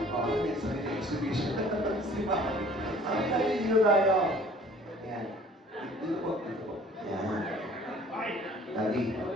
sarili exhibition. Si Mami. Mami Daddy, dito tayo. Ayan. Dito po. Ayan. Daddy.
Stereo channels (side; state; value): both; normal; correlation 0.52